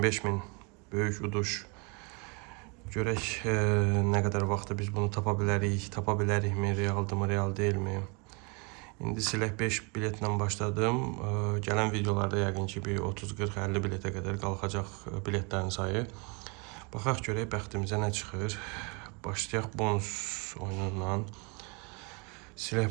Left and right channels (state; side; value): quieter; left; 31.9 dB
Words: böyük uduş. Görək nə qədər vaxtda biz bunu tapa bilərikmi, realdırmı, real deyilmi? İndi silək 5 biletlə başladım. Gələn videolarda yəqin ki bir 30, 40, 50 biletə qədər qalxacaq biletlərin sayı. Baxaq görək bəxtimizə nə çıxır. Başlayaq bonus oyunundan.